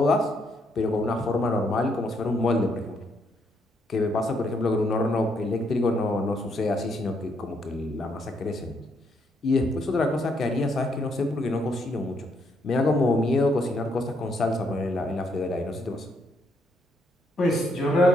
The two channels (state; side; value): normal; both; correlation 0.74